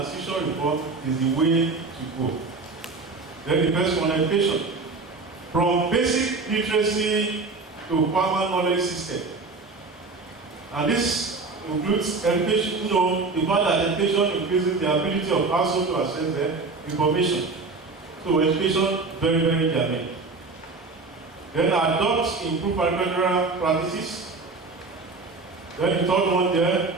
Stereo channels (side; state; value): left; quieter; 3.9 dB